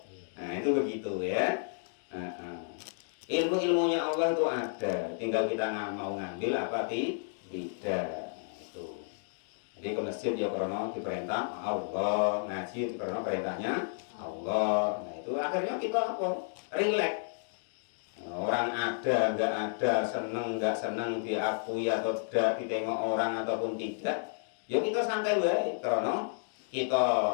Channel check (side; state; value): right; silent; digital silence